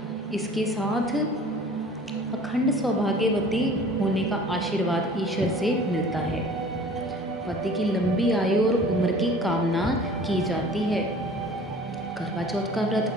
इसके साथ अखंड सौभाग्यवती होने का आशीर्वाद ईश्वर से मिलता है। पति की लंबी आयु और उम्र की कामना की जाती है। करवा चौथ का व्रत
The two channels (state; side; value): normal; both; correlation 0.47